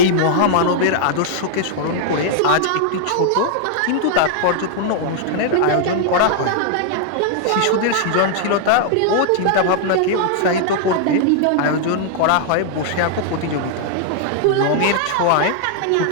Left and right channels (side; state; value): both; different; correlation -0.01